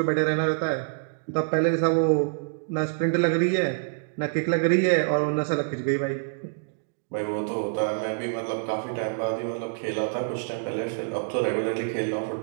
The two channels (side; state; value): left; silent; digital silence